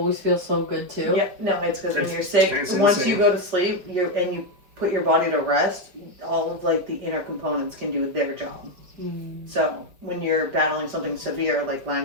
feels so good, too. Yeah, no, it's because when you're sick, It's once insane. you go to sleep, you put your body to rest, all of like the inner components can do their job. So when you're battling something severe like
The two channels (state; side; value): late; left; 5.0 ms